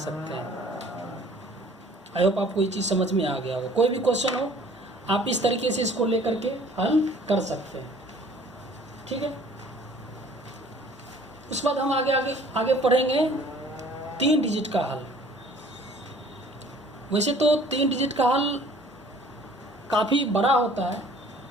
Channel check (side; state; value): both; normal; correlation 0.53